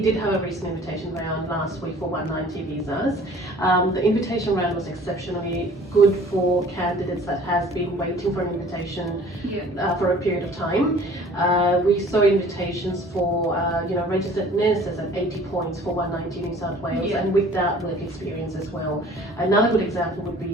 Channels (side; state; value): both; normal; correlation 0.50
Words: have a recent invitation round last week for 190 visas. The invitation round was exceptionally good for candidates that has been waiting for an invitation for a period of time. We saw invitations for registered nurses at 80 points for 190 New South Wales, and with that work experience as well. Another good example would